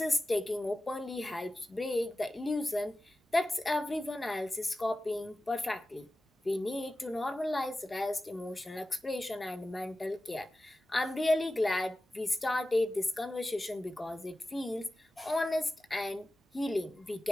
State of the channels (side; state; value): both; normal; correlation 0.95